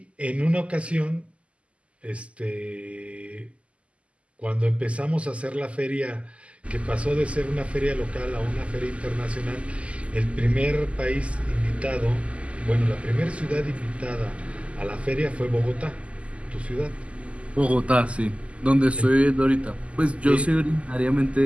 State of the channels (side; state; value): left; late; 0.059 ms